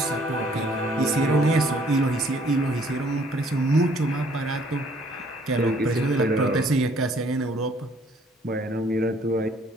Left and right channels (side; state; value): both; normal; correlation 0.61